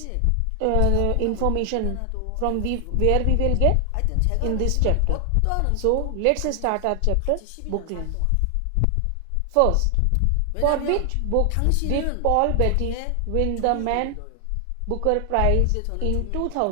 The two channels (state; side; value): different; both; correlation 0.00